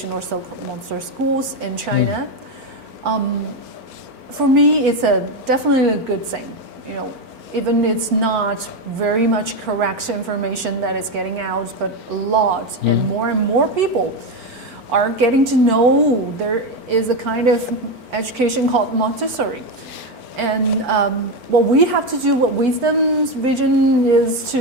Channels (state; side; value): late; left; 4.4 ms